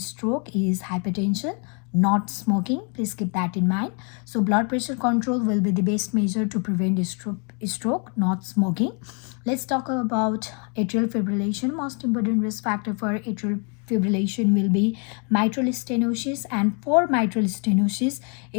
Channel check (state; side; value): quieter; right; 36.7 dB